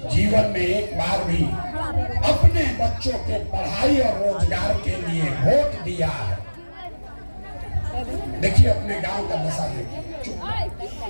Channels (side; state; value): both; inverted; correlation -1.00